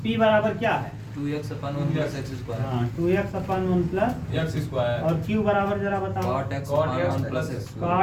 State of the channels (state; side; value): identical; both; correlation 1.00